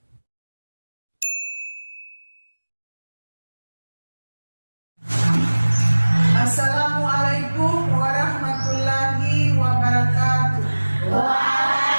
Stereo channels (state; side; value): inverted; both; correlation -1.00